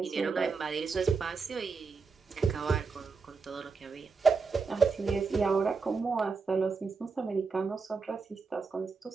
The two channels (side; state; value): left; quieter; 4.7 dB